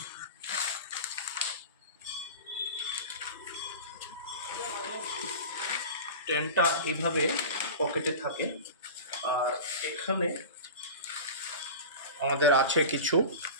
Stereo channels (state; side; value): inverted; both; correlation -0.32